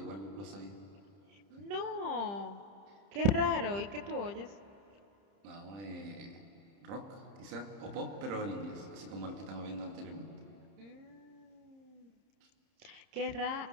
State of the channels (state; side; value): late; left; 30 ms